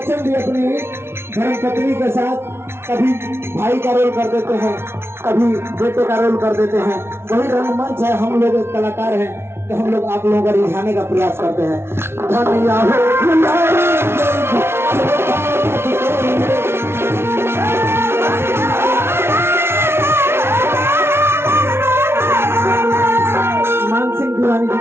भी अपनी धर्मपत्नी के साथ कभी भाई का रोल कर देते हैं कभी बेटे का रोल कर देते हैं। वही रंगमंच है, हम लोग कलाकार हैं तो हम लोग आप लोगों को रिझाने का प्रयास करते हैं। मान सिंह दीवानी जी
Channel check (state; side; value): late; left; 0.12 ms